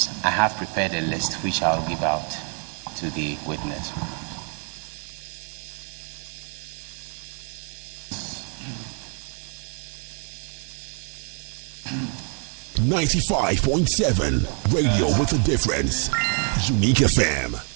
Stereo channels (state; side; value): quieter; left; 40.0 dB